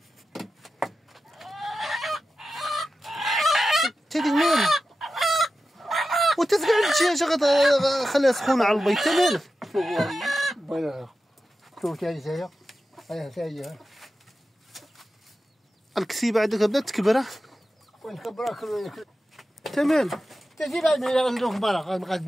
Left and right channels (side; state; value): both; normal; correlation 0.92